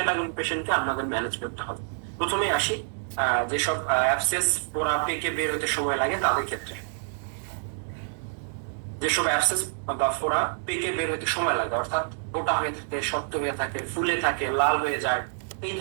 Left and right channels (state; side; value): silent; left; digital silence